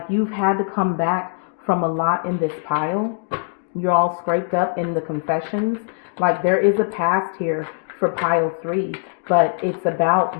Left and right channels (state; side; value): silent; right; digital silence